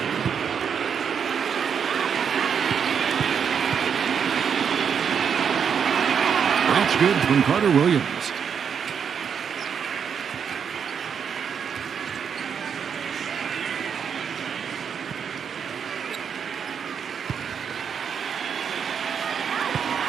That's good from Carter Williams.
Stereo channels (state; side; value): quieter; left; 7.2 dB